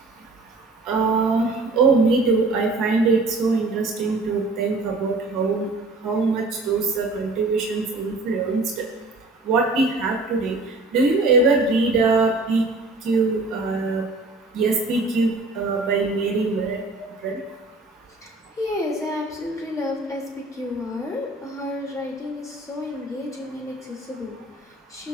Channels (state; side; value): quieter; left; 3.2 dB